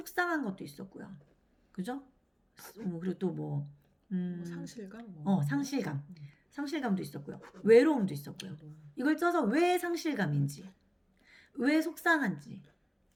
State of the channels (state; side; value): identical; both; correlation 1.00